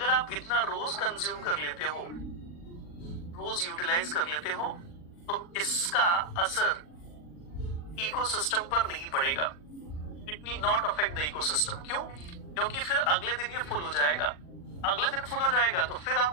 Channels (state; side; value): late; right; 40 ms